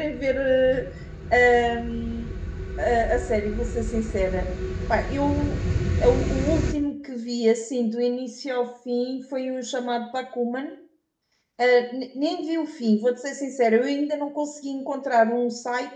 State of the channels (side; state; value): both; identical; correlation 1.00